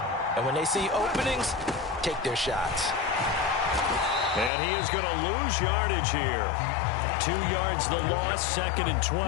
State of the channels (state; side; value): drops out; right; at 4.5 s